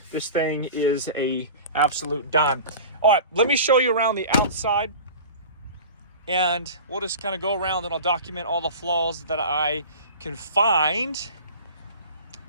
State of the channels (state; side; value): inverted; both; correlation -0.37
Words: This thing is a absolute dime. All right, let me show you around the outside, and we'll just kind of go around and I'll document all the flaws that I can find.